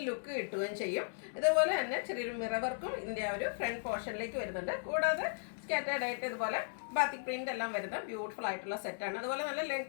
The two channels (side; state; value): right; silent; digital silence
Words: ലുക്ക് കിട്ടുകയും ചെയ്യും. ഇതുപോലെ തന്നെ ചെറിയൊരു മിറർ വർക്കും ഇതിൻ്റെ ആ ഒരു ഫ്രണ്ട് പോർഷനിലേക്ക് വരുന്നുണ്ട്. കൂടാതെ സ്കാറ്റേർഡ് ആയിട്ട് ഇതുപോലെ ബാത്തിക് പ്രിന്റ് എല്ലാം വരുന്ന ബ്യൂട്ടിഫുൾ ആയിട്ടുള്ള സെറ്റാണ്. അതുപോലെ നല്ല